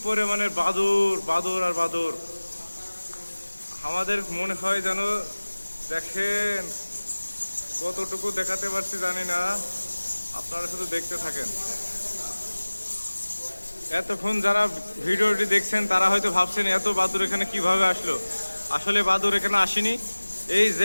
পরিমাণের বাদুর, বাদুর আর বাদুর। আমাদের মনে হয় যেন, দেখেন কতটুকু দেখাতে পারছি জানি না, আপনারা শুধু দেখতে থাকেন। এতক্ষণ যারা ভিডিওটি দেখছেন তারা হয়তো ভাবছেন এত বাদুর এখানে কিভাবে আসলো। আসলে বাদুর এখানে আসেনি। এই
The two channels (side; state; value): both; inverted; correlation -1.00